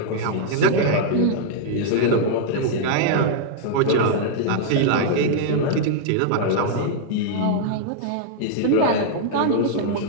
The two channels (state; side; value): different; both; correlation -0.01